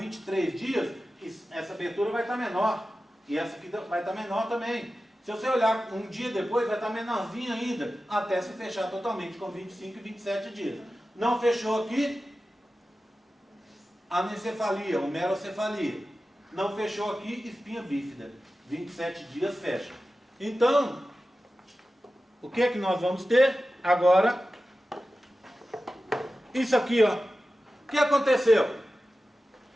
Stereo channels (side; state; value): both; normal; correlation 0.94